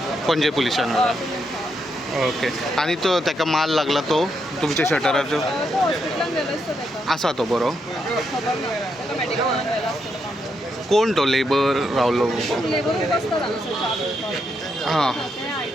पणजे पुलिसान ओके. आनी तो ताका मार लागला तो तुमच्या शटराचो? तो हॉस्पिटलान गेलो आसता तेका. आसा तो बरो? खबर ना तेका मेडिकलान व्हेलो आसतलो काम करपाक. कोण तो लेबर रावलो? लेबरूच आसता हांगासर च्या पिवपाक. हां तें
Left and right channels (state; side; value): normal; both; correlation 0.80